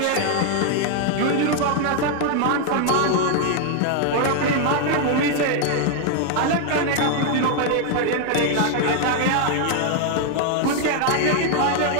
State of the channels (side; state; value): both; different; correlation 0.00